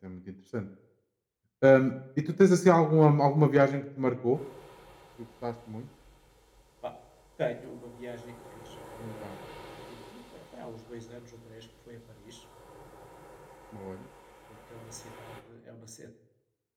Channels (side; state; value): both; identical; correlation 1.00